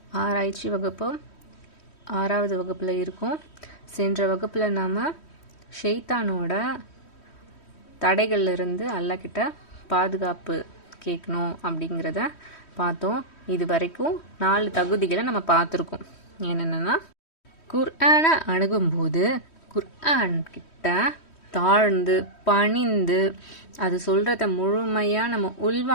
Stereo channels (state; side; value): late; right; 3.1 ms